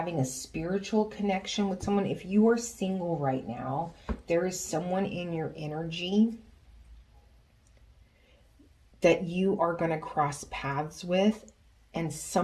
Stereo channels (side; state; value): both; identical; correlation 1.00